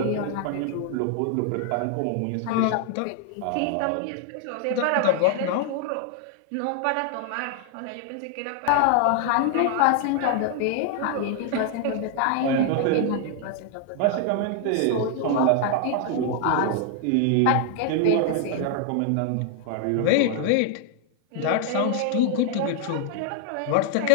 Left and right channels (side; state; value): both; different; correlation 0.00